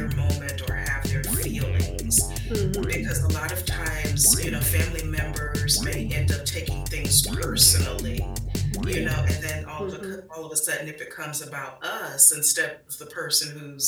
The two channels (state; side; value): identical; both; correlation 1.00